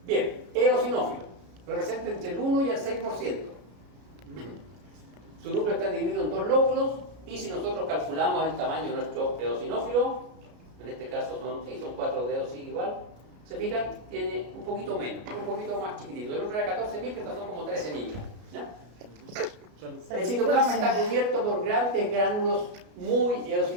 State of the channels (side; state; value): left; late; 33 ms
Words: Bien, eosinófilo, representa entre el 1 y el 6%. Su núcleo está dividido en 2 lóbulos, y si nosotros calculamos el tamaño de nuestro eosinófilo, en este caso son 4 dedos, sigue igual, se fijan, tiene un poquito menos, un poquito más chiquitito. El otro era 14 micras, estos son como 13 micras, ¿ya? El citoplasma está cubierto por grandes gránulos muy